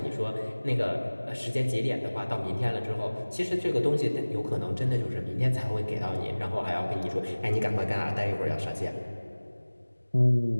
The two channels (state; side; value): inverted; both; correlation -1.00